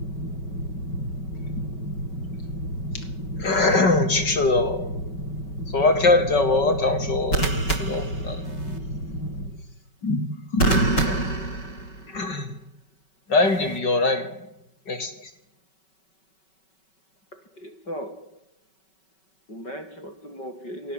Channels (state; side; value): late; right; 5.3 ms